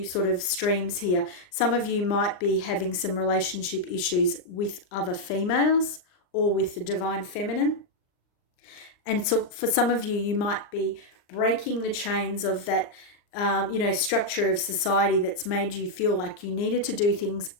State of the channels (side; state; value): right; late; 39 ms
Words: sort of streams here. Some of you might be having some relationship issues with other females, or with the divine feminine. And so for some of you, you might be breaking the chains of that structure of society that's made you feel like you needed to do things